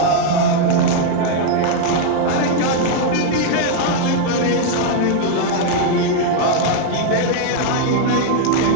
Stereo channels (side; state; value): both; different; correlation 0.00